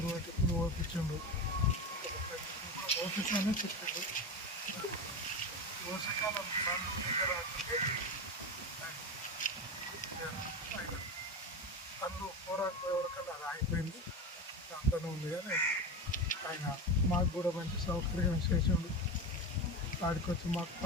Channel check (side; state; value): both; normal; correlation 0.21